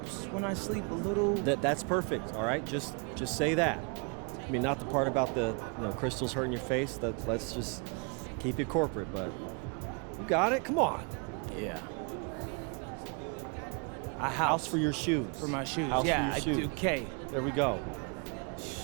when I sleep a little. That's perfect. All right, just say that. I mean, not the part about the crystals hurting your face. Let's just keep it corporate. But you got it. Come on. Yeah. A house for your shoes. For my shoes. House yeah, for your shoes. I do. Okay. There we go.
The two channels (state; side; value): quieter; left; 35.4 dB